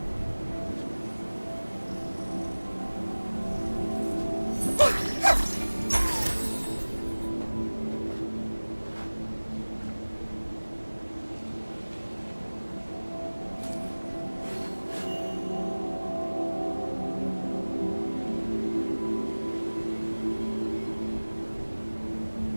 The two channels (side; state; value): both; inverted; correlation -1.00